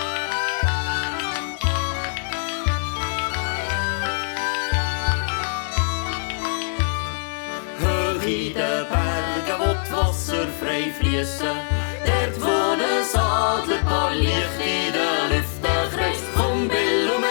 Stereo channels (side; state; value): right; silent; digital silence